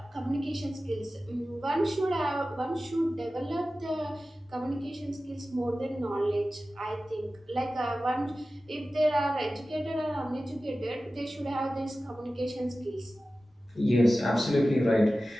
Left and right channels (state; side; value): normal; both; correlation 0.95